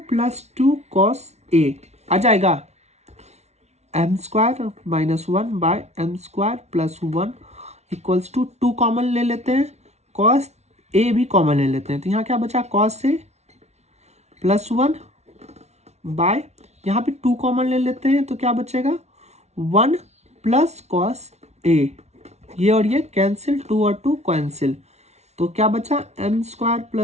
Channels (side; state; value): left; late; 0.32 ms